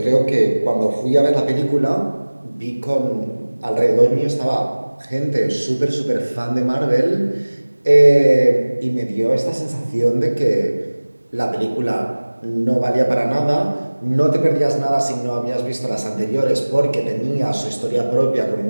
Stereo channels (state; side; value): inverted; both; correlation -1.00